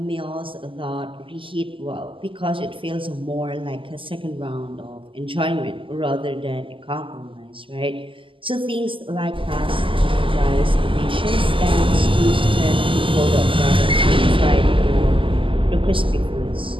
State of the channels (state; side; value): late; left; 0.25 ms